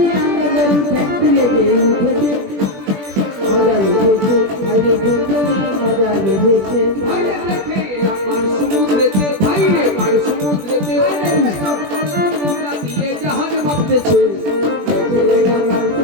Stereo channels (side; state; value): left; late; 20 ms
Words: আমরা গরু, ঠ্যাং তুলে দিয়ে উঠেছে। মজা বেঁধেছে, ভাই রে ঘুম ভেঙে মজা বেঁধেছে। ভাই রে দেখে এলাম পার সমুদ্রেতে, ভাই রে পার সমুদ্রেতে, দিয়ে জাহাজ ভাবতেছে। দেখে এলাম পার